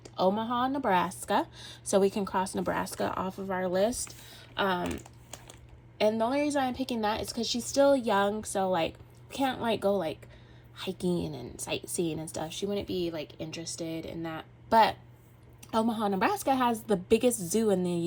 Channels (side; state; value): both; identical; correlation 1.00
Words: Omaha, Nebraska. So we can cross Nebraska off of our list. And the only reason I'm picking that is because she's still young. So like, can't like go like hiking and sightseeing and stuff. She wouldn't be like interested in that. But Omaha, Nebraska has the biggest zoo in the